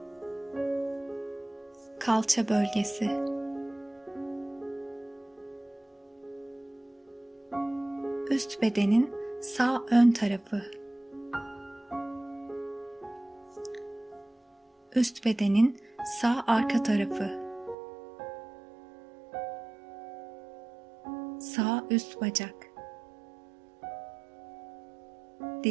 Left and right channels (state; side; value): drops out; left; at 17.8 s